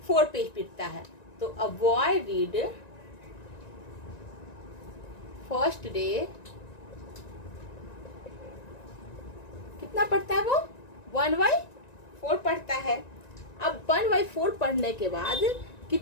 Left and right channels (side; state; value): right; late; 1.9 ms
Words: पेज पढ़ता है। तो a boy read first day कितना पढ़ता है वो, 1/4 पढ़ता है। अब 1/4 पढ़ने के बाद